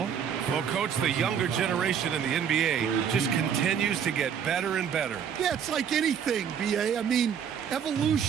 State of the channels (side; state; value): left; quieter; 7.9 dB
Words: Well, Coach, the younger generation in the NBA just continues to get better and better. Yeah, it's like anything, B.A. I mean,